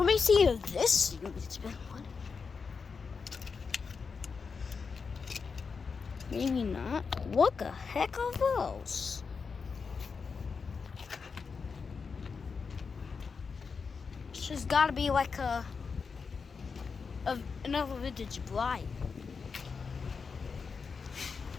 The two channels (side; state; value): right; quieter; 5.3 dB